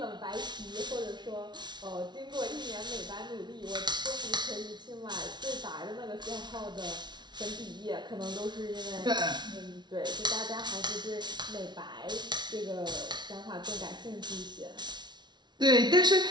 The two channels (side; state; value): left; late; 0.21 ms